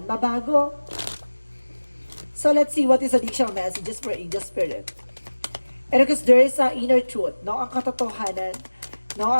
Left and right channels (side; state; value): both; inverted; correlation -1.00